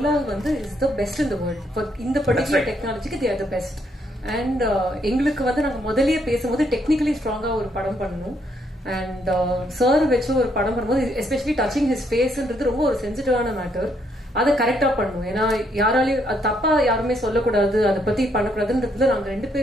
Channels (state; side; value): normal; both; correlation 0.72